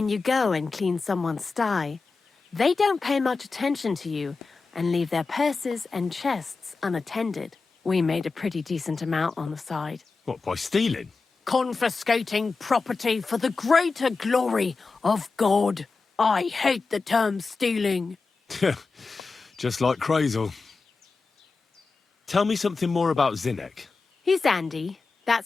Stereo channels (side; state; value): right; quieter; 4.2 dB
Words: you go and clean someone's sty, they don't pay much attention to you and leave their purses and chests unattended. We made a pretty decent amount on the side. What, by stealing? Confiscating property for the greater glory of God. I hate the term stealing. Just like Crazel. Tell me something more about Zinnek. He's Andy,